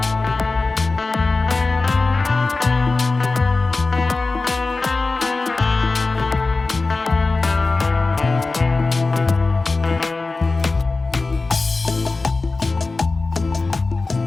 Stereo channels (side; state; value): right; quieter; 3.7 dB